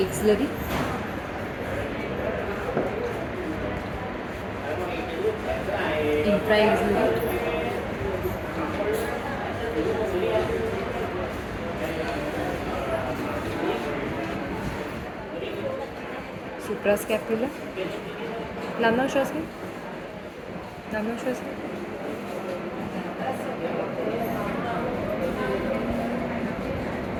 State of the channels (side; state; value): both; identical; correlation 1.00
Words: Axillary. Infra-axillary. Suprascapular. लांब लांब श्वास घ्या. लांब लांब श्वास घ्या.